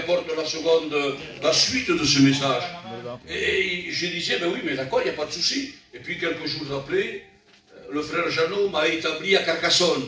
la suite de ce message. Et je disais, ben oui, mais d'accord, il n'y a pas de souci. Et puis quelques jours après, le frère Jeannot m'a établi à Carcassonne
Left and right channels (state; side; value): identical; both; correlation 1.00